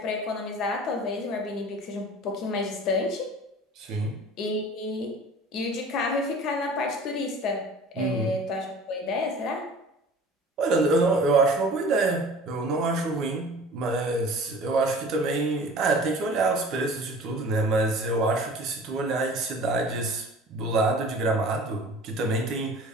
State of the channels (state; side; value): normal; both; correlation 0.43